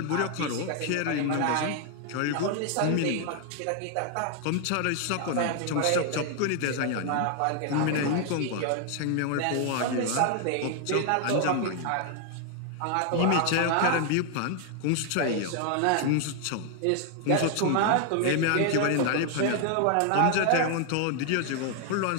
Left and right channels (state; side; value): different; both; correlation 0.00